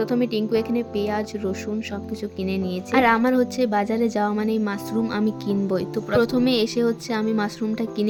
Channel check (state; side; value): identical; both; correlation 1.00